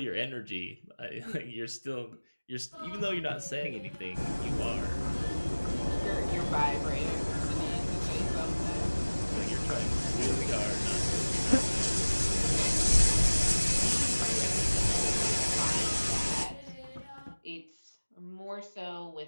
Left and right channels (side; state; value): both; inverted; correlation -1.00